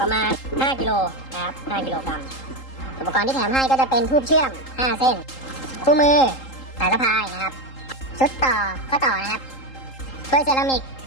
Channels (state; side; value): late; right; 3.8 ms